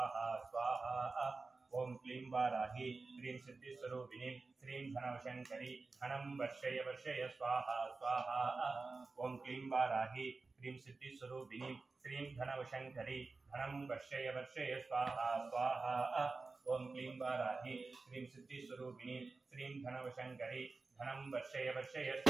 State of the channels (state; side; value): quieter; left; 3.9 dB